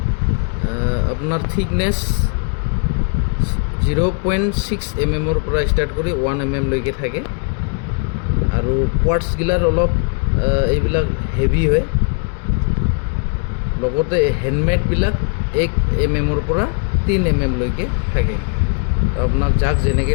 আপোনাৰ থিকনেছ 0.6 mm পৰা ষ্টাৰ্ট কৰি 1 mm লৈকে থাকে। আৰু কোৱাৰ্টছগিলাৰ অলপ এইবিলাক হেভি হয়। লগতে হেণ্ডমেডবিলাক 1 mm পৰা 3 mm লৈকে থাকে। তো আপোনাক যাক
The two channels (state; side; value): quieter; right; 38.9 dB